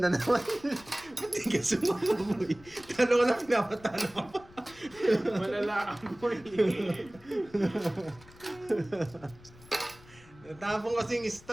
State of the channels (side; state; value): left; noise; rumble, 23 dB below the sound